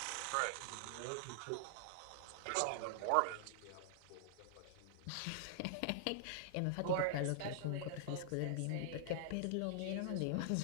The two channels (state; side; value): different; both; correlation -0.01